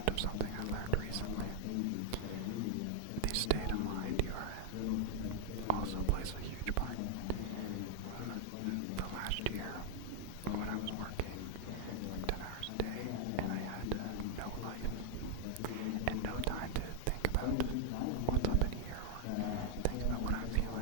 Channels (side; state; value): both; different; correlation 0.00